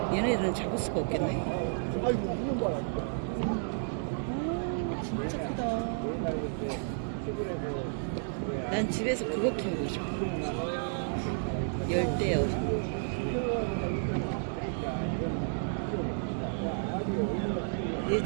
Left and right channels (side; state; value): left; silent; digital silence